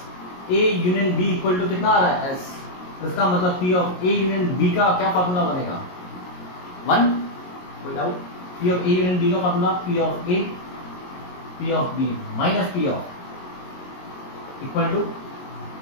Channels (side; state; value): right; late; 22 ms